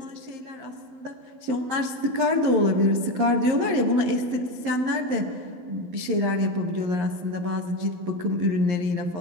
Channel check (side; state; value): left; late; 11 ms